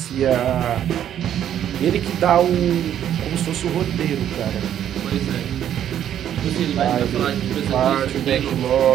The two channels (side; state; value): left; quieter; 10.4 dB